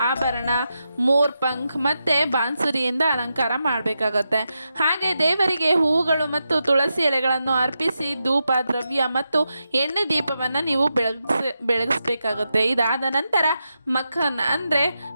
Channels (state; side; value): inverted; both; correlation -0.87